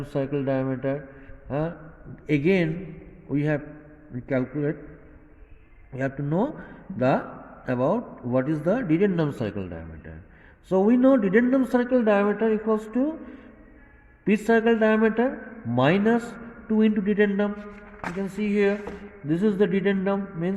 circle diameter. Again we have calculate, we have to know about what is the dedendum circle diameter. So we know dedendum circle diameter equals to pitch circle diameter minus 2 into dedendum. You can see here, this is the dedendum,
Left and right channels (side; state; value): both; identical; correlation 1.00